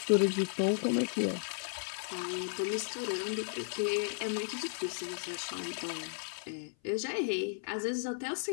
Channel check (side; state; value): right; silent; 55 dB below the other